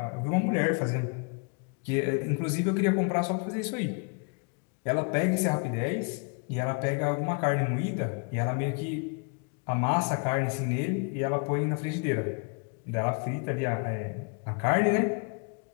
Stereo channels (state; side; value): quieter; right; 36.6 dB